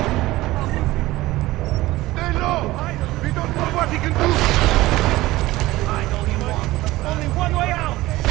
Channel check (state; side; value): quieter; left; 17.9 dB